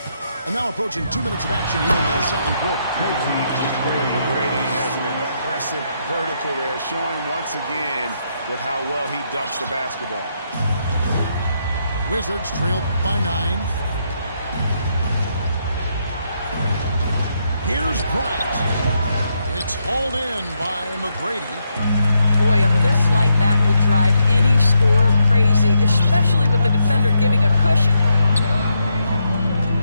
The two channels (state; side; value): inverted; both; correlation -0.79